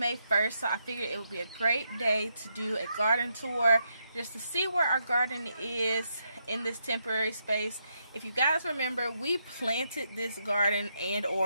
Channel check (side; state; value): both; inverted; correlation -0.80